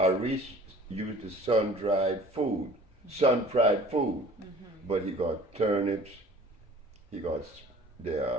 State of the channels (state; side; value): normal; both; correlation 0.48